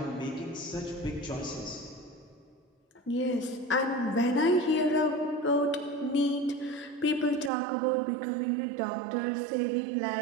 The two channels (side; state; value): left; drops out; at 7.5 s